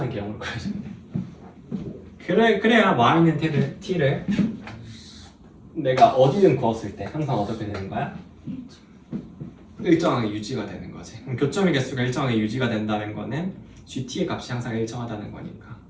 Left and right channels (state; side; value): identical; both; correlation 1.00